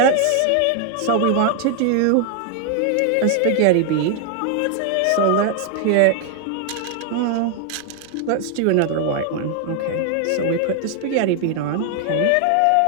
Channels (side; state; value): both; different; correlation 0.00